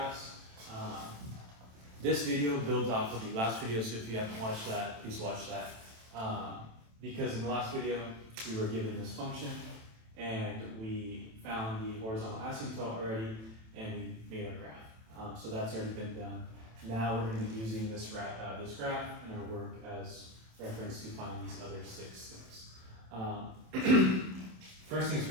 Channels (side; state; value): left; late; 27 ms